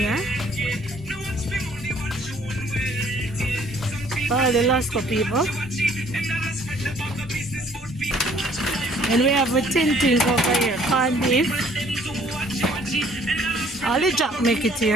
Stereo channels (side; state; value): both; normal; correlation 0.59